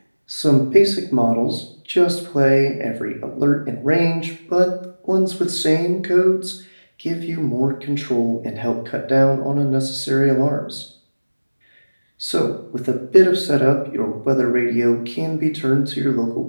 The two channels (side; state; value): both; inverted; correlation -1.00